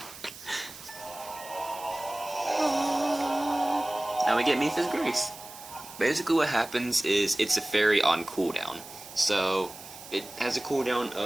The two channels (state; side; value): noise; right; hiss, 16 dB below the sound